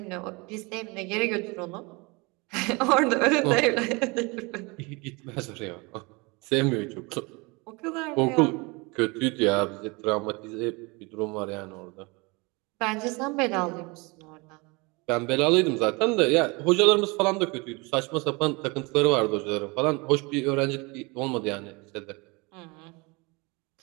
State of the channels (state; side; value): quieter; left; 27.1 dB